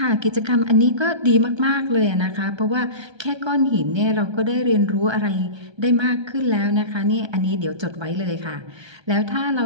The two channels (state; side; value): late; left; 1.3 ms